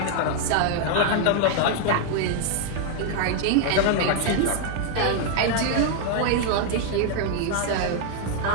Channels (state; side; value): different; both; correlation 0.00